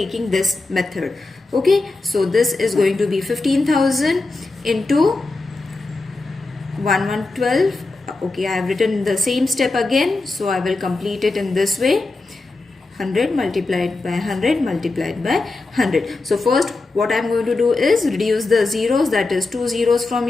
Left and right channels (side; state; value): right; quieter; 3.3 dB